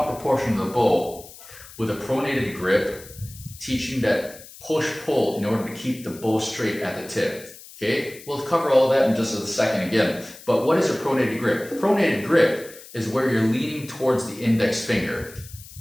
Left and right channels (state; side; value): noise; left; hiss, 18 dB below the sound